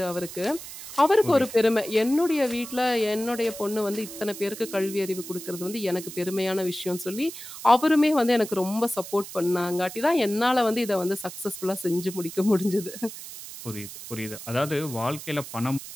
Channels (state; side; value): noise; right; hiss, 12 dB below the sound